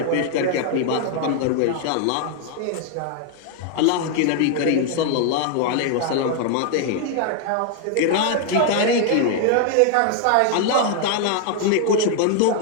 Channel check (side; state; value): both; different; correlation 0.00